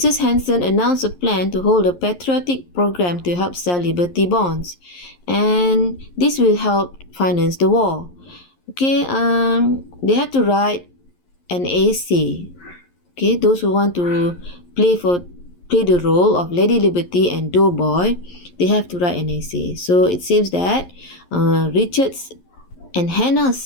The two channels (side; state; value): right; late; 11 ms